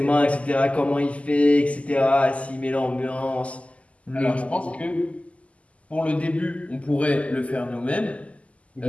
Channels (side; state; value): right; late; 0.064 ms